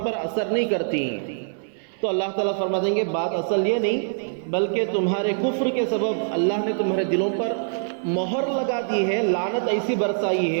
پر اثر نہیں کرتی۔ تو اللہ تعالیٰ فرما دیں گے بات اصل یہ نہیں، بلکہ تمہارے کفر کے سبب اللہ نے تمہارے دلوں پر مہر لگا دی ہے، لعنت ایسی برسائی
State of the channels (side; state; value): left; silent; 58 dB below the other